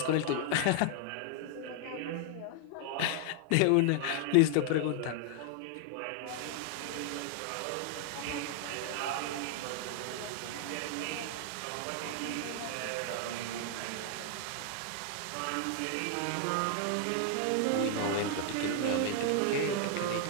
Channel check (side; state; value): both; different; correlation 0.00